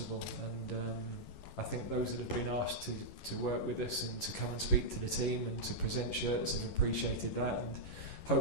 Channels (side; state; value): right; late; 11 ms